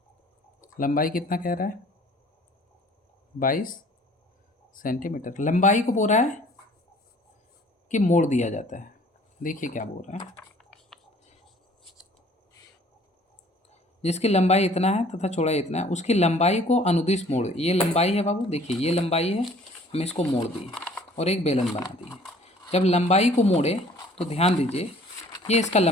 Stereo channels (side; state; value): both; normal; correlation 0.54